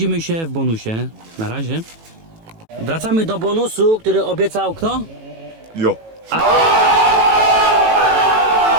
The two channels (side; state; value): left; late; 18 ms